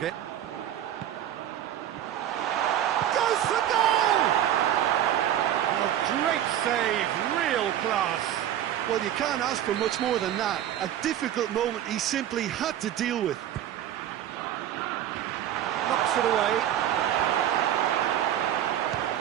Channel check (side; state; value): left; quieter; 11.3 dB